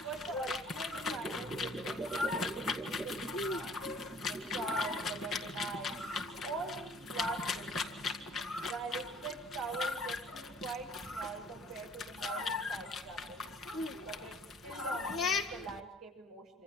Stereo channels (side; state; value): both; normal; correlation 0.54